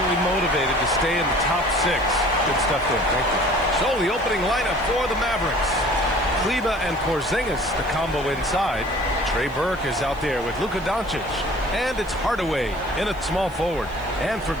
motivated to stay in the top 6. Good stuff there. Thank you. So the opening lineup for the Mavericks. Kleber and Porzingis, the combo inside. Trey Burke is out there with Luka Doncic. And it's Hardaway in at small forward. And for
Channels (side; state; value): right; noise; hiss, 26 dB below the sound